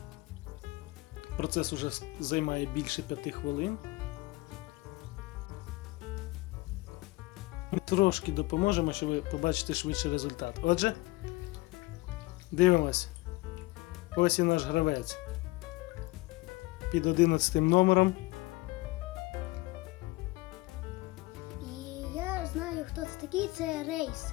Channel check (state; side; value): quieter; right; 21.8 dB